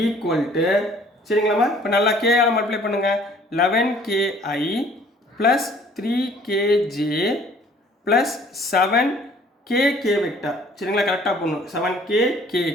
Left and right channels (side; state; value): both; normal; correlation 0.56